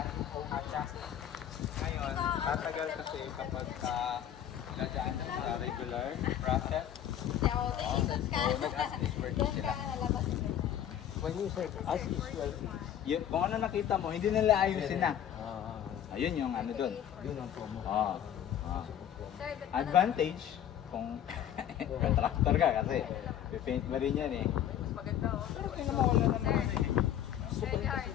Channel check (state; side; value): quieter; right; 10.4 dB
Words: ko siya. Ngayon, tatagal kasi kapag nadaan na sa regular process. So, nag-assist work sila. When you say as is well, Yun, kung ano nakita mo, hindi nila ayusin na. Ayun yung ano dun. yun ang promo. Oh. Advantage, kung contractor ka kasi pipaint mo rin yan eh. Pero kaya naman wala naman eh.